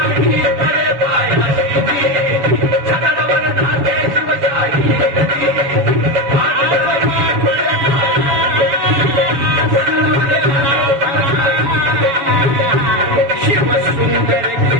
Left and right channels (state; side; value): late; left; 7.2 ms